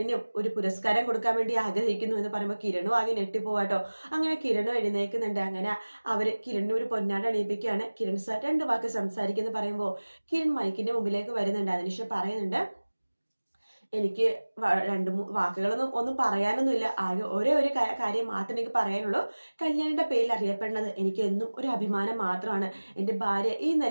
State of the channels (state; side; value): inverted; both; correlation -1.00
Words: ഒരു പുരസ്കാരം കൊടുക്കാൻ വേണ്ടി ആഗ്രഹിക്കുന്നു എന്ന് പറയുമ്പോൾ കിരണും ആകെ ഞെട്ടിപ്പോവാട്ടോ. അങ്ങനെ കിരണും എഴുന്നേൽക്കുന്നുണ്ട്. അങ്ങനെ അവർ കിരണിന് ഒരു പൊന്നാട് അണിയിപ്പിക്കുകയാണ്. കിരൺ സാർ 2 വാക്ക് സംസാരിക്കുന്നു പറയുമ്പോൾ കിരൺ മൈക്കിന്റെ മുമ്പിലേക്ക് വരുന്നുണ്ട്. അതിനുശേഷം പറയുന്നുണ്ട്, എനിക്ക് 2-3 വാക്കുകളൊന്നും പറയാനൊന്നുമില്ല. ആകെ ഒരേ ഒരു കാര്യം മാത്രമേ എനിക്ക് പറയാനുള്ളൂ. കല്യാണിയുടെ പേരിൽ അറിയപ്പെടുന്നത് എനിക്ക് എന്നും ഒരു അഭിമാനം മാത്രമാണ്. എൻ്റെ ഭാര്യ ഈ